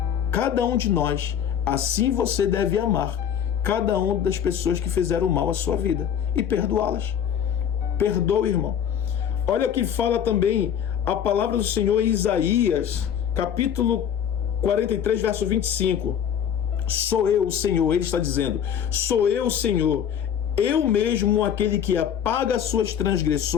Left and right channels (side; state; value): right; quieter; 8.9 dB